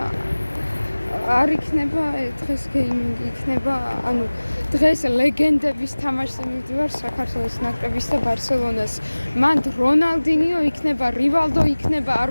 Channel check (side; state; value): both; inverted; correlation -1.00